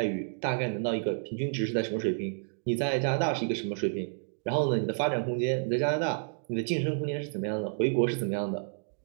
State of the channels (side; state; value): left; silent; digital silence